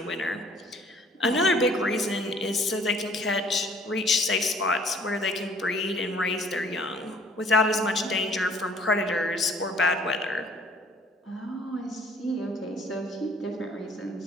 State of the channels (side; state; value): both; normal; correlation 0.57